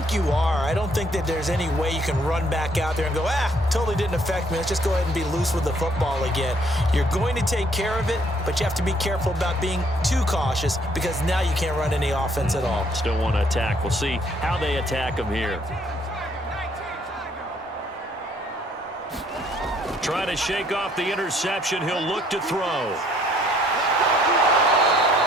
you are. I don't think that there's any way you can run back out there and go, totally didn't affect me. Let's just go ahead and be loose with the football again. You're going to take care of it, but you have to be careful about being too cautious because now you can't run any offense at all. Still want to attack. We'll see how they attack them here. Trying to shake off the interception. He'll look to throw.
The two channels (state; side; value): normal; both; correlation 0.65